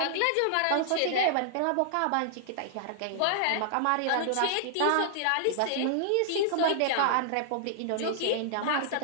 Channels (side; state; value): both; different; correlation -0.01